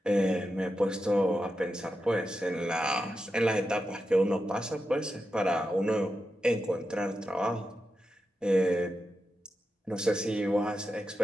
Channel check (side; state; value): both; normal; correlation 0.89